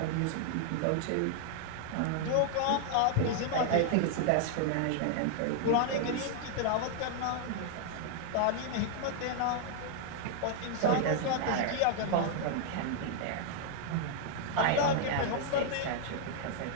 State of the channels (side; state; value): both; different; correlation 0.00